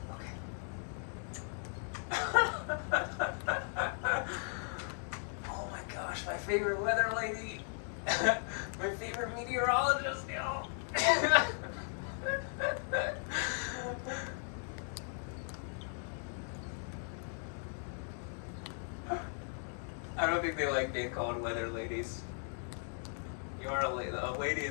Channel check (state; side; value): silent; right; 53 dB below the other